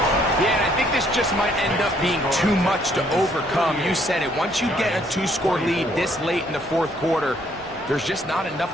Yeah, and I think this just might end up being too much to overcome. You said it. Once you get a 2-score lead this late in the fourth quarter, there's just not enough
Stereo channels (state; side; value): normal; both; correlation 0.66